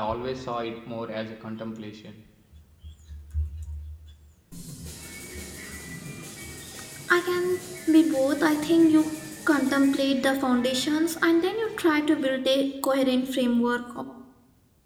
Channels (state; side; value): identical; both; correlation 1.00